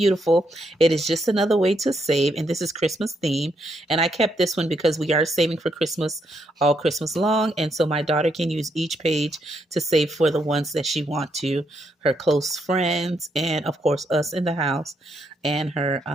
It is just another way to save, and this is Christmas theme. And I kept this one because we are saving for Christmas all Christmas long, and so my daughter can use each page to save for the ones that she wants to, her close friends, and of course us in the house, and her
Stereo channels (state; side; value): normal; both; correlation 0.77